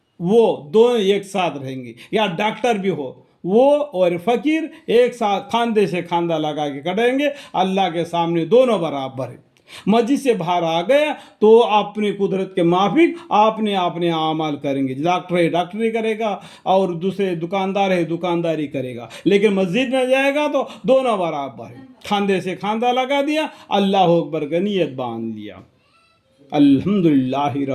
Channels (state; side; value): identical; both; correlation 1.00